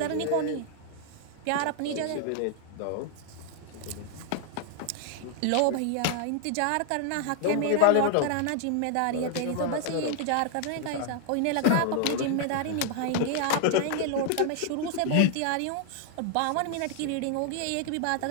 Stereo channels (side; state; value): both; different; correlation 0.00